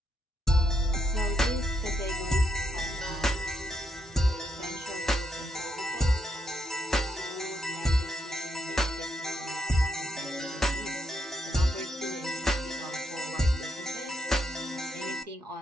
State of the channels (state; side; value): normal; both; correlation 0.79